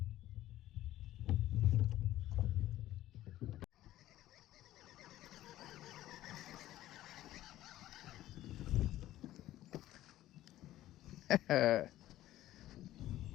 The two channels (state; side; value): quieter; right; 14.4 dB